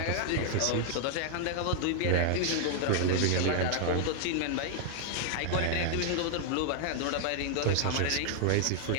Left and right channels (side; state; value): both; different; correlation 0.00